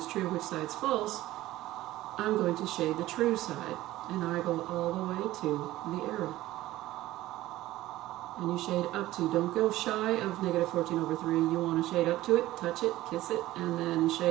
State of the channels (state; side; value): quieter; left; 16.0 dB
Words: true, which side's false, I'm going to shade the true side, and I go all the way to the arrow. And you shade up to, don't go shy of -14/3, you want to shade up to it, touch it, kiss it, and then